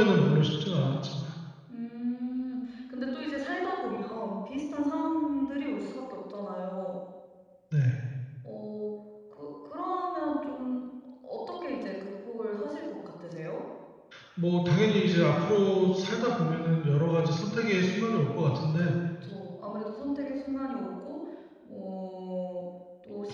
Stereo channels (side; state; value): both; identical; correlation 1.00